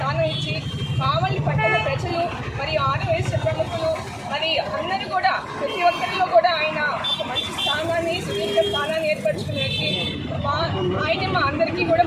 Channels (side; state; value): both; identical; correlation 1.00